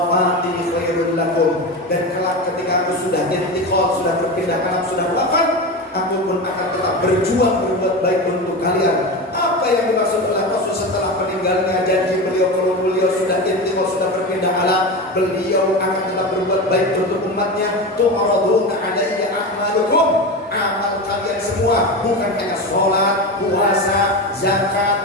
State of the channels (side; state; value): both; normal; correlation 0.23